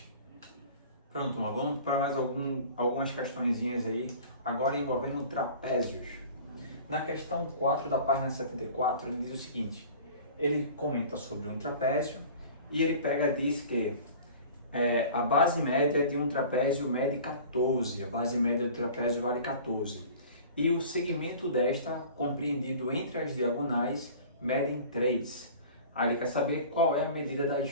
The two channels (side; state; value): both; inverted; correlation -0.43